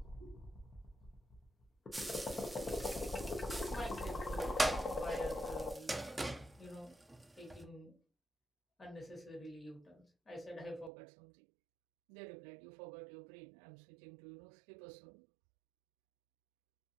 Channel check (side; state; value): left; drops out; at 10.9 s